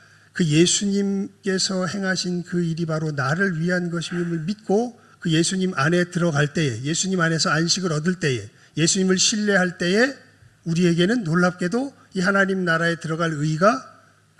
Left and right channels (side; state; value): both; identical; correlation 1.00